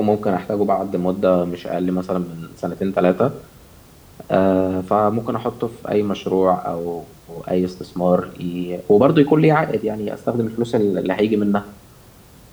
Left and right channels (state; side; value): identical; both; correlation 1.00